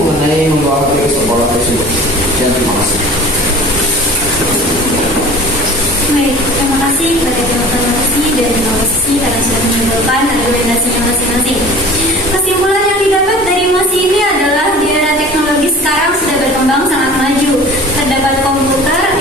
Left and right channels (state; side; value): normal; both; correlation 0.42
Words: membawa HP ke sekolah tersebut. Dan terima kasih. Baik, terima kasih kepada tim oposisi dan tim oposisi karena sudah menyimpulkan argumentasinya masing-masing. Kesimpulan yang didapat dari mosi ini adalah di era teknologi sekarang sudah berkembang sangat maju. Terdapat komputer,